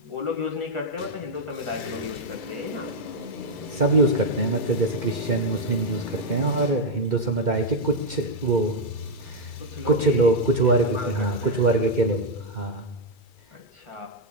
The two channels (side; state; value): right; late; 2.3 ms